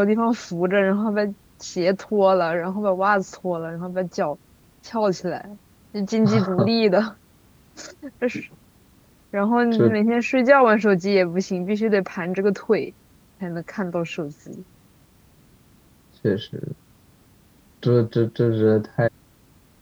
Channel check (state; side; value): identical; both; correlation 1.00